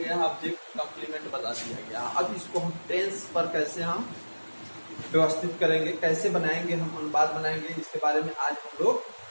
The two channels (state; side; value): inverted; both; correlation -1.00